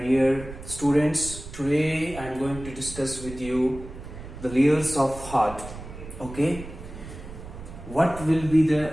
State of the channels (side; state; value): right; noise; rumble, 13 dB below the sound